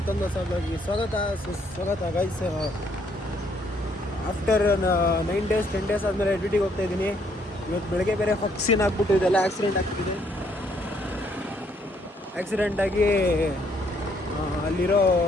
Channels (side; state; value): both; normal; correlation 0.69